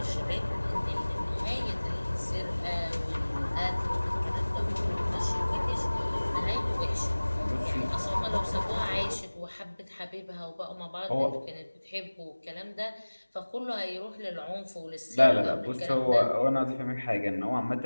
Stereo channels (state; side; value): inverted; both; correlation -1.00